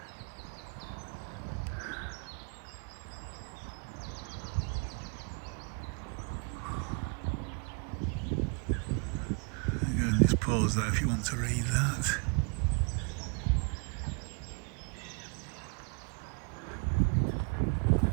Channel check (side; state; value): left; quieter; 35.5 dB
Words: Again, just pause there if you want to read that.